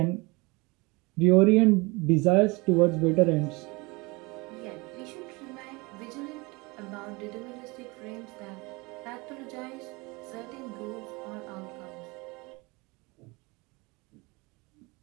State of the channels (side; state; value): left; quieter; 25.8 dB